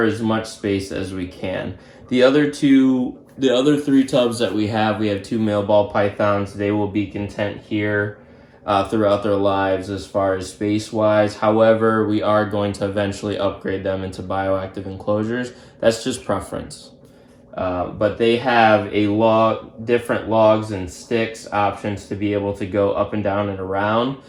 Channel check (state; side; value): identical; both; correlation 1.00